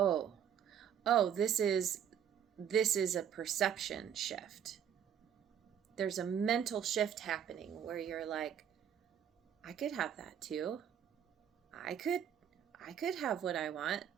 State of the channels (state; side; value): quieter; left; 8.9 dB